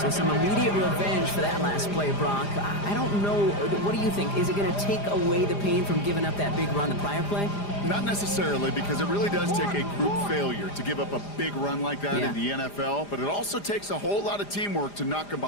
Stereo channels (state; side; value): late; right; 4.9 ms